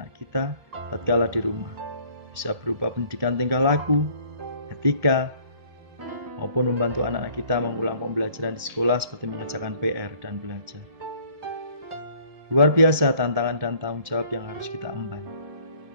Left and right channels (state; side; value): late; left; 1.7 ms